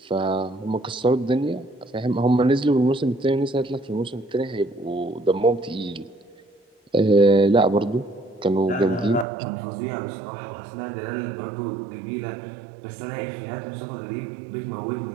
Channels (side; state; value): left; drops out; at 9.2 s